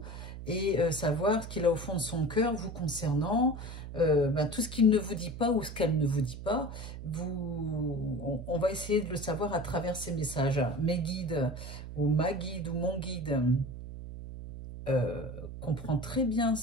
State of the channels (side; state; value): right; noise; hum, 10 dB below the sound